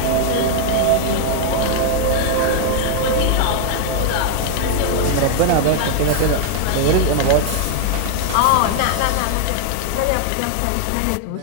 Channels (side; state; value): both; different; correlation 0.00